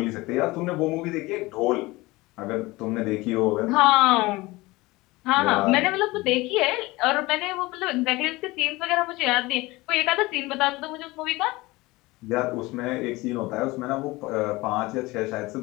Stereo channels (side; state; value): right; quieter; 21.2 dB